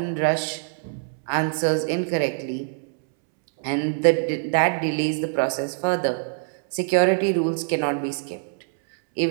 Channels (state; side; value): silent; left; 63 dB below the other